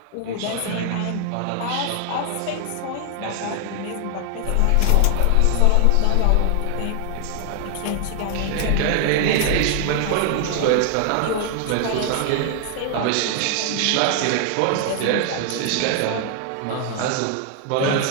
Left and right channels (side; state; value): both; different; correlation 0.00